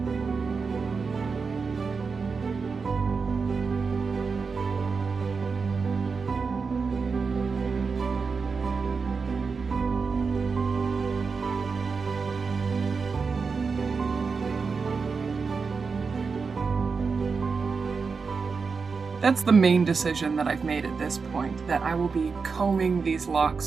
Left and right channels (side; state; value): left; quieter; 5.0 dB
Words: That's the main decision that I've made at this point, that I will be combing these